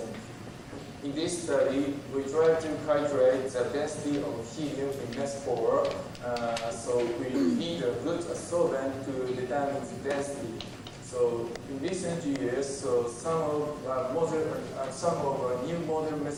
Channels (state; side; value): identical; both; correlation 1.00